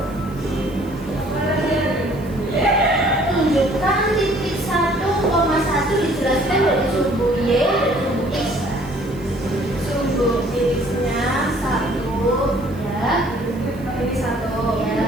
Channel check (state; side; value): noise; right; hiss, 26 dB below the sound